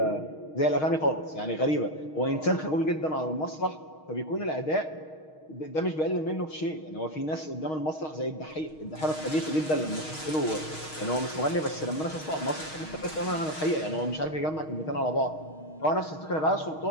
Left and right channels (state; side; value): late; right; 6.4 ms